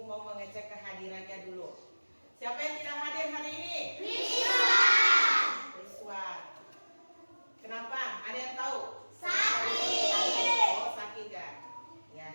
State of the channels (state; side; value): inverted; both; correlation -1.00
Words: mau mengecek kehadirannya dulu. Siapa yang tidak hadir hari ini? Rizwan. Kenapa? Ada yang tahu? Sakit. Oh, sakit ya.